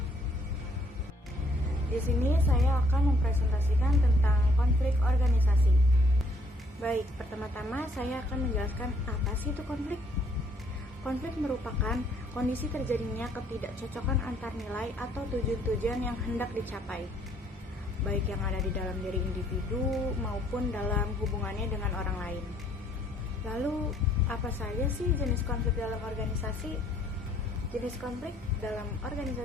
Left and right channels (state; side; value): normal; both; correlation 0.66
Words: Di sini saya akan mempresentasikan tentang konflik organisasi. Baik, pertama-tama saya akan menjelaskan apa sih itu konflik. Konflik merupakan kondisi terjadinya ketidakcocokan antar nilai atau tujuan-tujuan yang hendak dicapai, baik yang ada di dalam diri individu maupun dalam hubungannya dengan orang lain. Lalu, apa saja sih jenis konflik dalam organisasi? Jenis konflik dalam